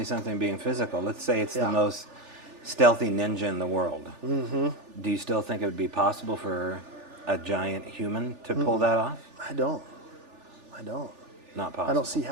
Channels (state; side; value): late; left; 3.4 ms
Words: something being physical. Let's say it's Yeah. the most stealthy ninja in the world. Mm-hmm. Do you still think it would be possible for a giant human to pull that off? I don't. Not possible. I don't see